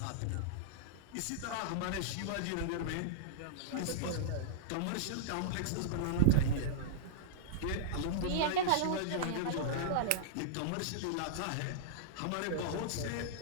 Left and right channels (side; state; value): both; different; correlation -0.02